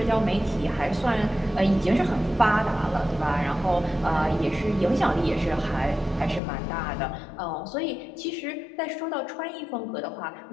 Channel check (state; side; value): drops out; right; at 6.4 s